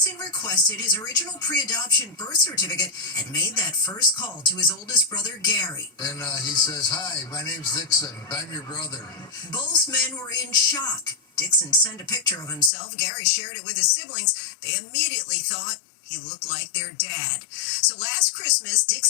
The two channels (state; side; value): drops out; right; at 12.7 s